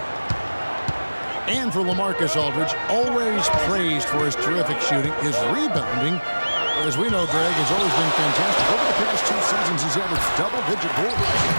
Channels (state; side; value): inverted; both; correlation -1.00